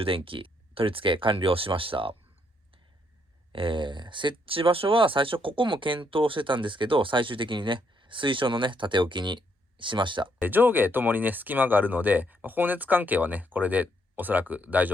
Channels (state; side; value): normal; both; correlation 0.73